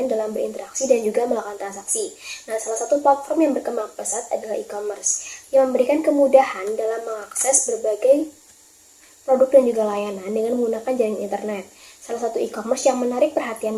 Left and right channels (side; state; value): both; identical; correlation 1.00